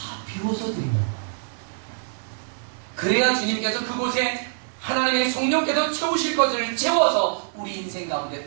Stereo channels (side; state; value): left; silent; digital silence